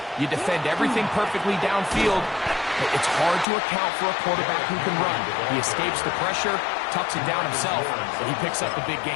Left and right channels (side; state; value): right; drops out; at 3.5 s